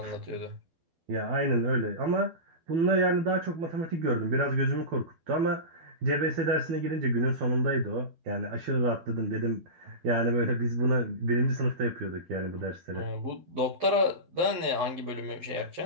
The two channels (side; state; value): left; late; 12 ms